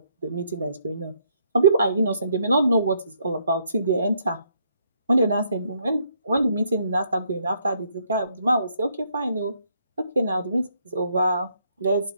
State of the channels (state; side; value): inverted; both; correlation -0.71